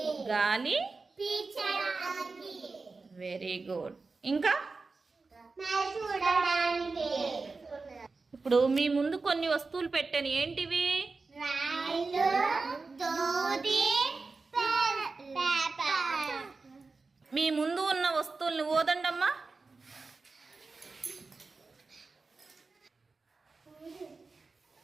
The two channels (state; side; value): quieter; left; 4.0 dB